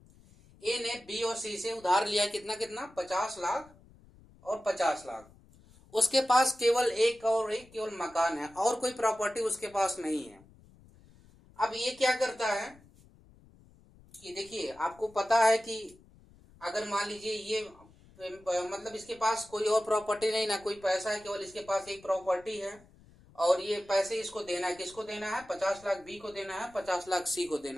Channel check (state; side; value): noise; left; rumble, 26 dB below the sound